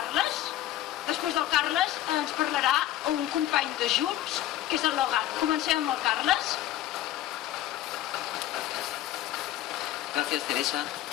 Després del Carles ens parlarà un company de Junts, que és el Logat. Comencem amb el Carles. Gracias, Teresa.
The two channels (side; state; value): right; quieter; 13.5 dB